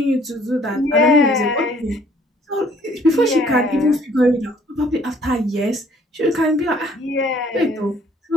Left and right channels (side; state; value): both; normal; correlation 0.60